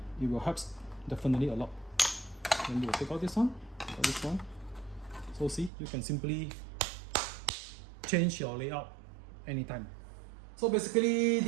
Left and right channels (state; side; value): drops out; left; at 5.7 s